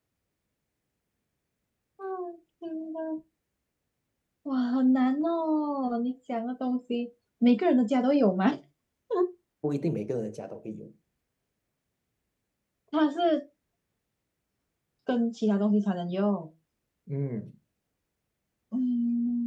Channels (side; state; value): both; identical; correlation 1.00